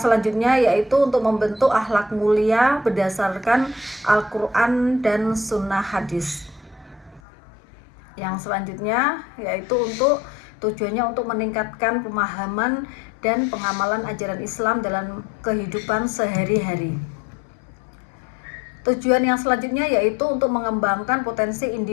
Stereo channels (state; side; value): drops out; right; at 7.2 s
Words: selanjutnya yaitu untuk membentuk akhlak mulia berdasarkan Al-Quran dan Sunnah Hadis. Yang selanjutnya yaitu tujuannya untuk meningkatkan pemahaman dan pengamalan ajaran Islam dalam kehidupan sehari-hari. Tujuan yang selanjutnya yaitu untuk mengembangkan potensi